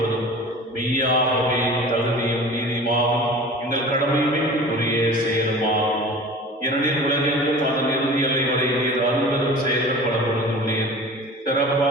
மெய்யாகவே தகுதியும் நீதியுமாகும் எங்கள் கடமையுமே உரிய செயலுமாகும். ஏனெனில் உலகெங்கும் அதன் இறுதி எல்லை வரை நீர் அருள்வதும் செயல்கள் பல பொழுதுள்ளீர்.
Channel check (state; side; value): normal; both; correlation 0.39